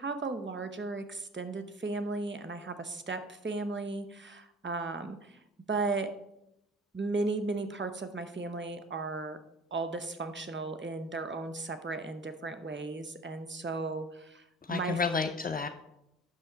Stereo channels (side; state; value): both; normal; correlation 0.43